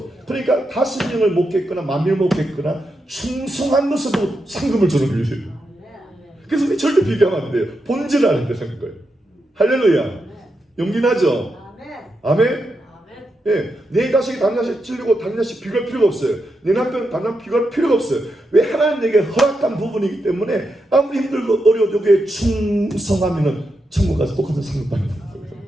그러니까 5명을 목했거나 10,000명을 목했거나 충성한 것으로 상금을 주는 거예요. 그래서 우리 절대 비교하면 안 돼요. 본질을 아는 데는 거예요. 할렐루야. 용기나죠? 아멘. 예, 내 자식이 다른 자식 찔리고 다른 자식 비교할 필요가 없어요. 내 남편 다른 남편 비교할 필요가 없어요. 왜? 하나님 내게 허락한 부분이기 때문에 아무리 힘들고 어려워도 여기에 충성하면은 천국 가서 똑같은 상급 받는 거예요.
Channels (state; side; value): normal; both; correlation 0.85